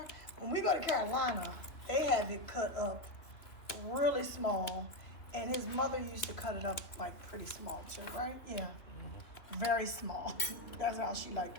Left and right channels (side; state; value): right; late; 3.2 ms